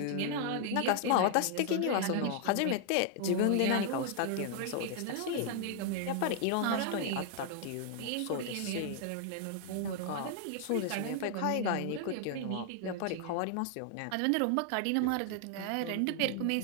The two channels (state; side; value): different; both; correlation 0.00